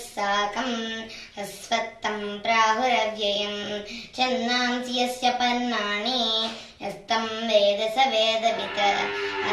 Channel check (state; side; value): identical; both; correlation 1.00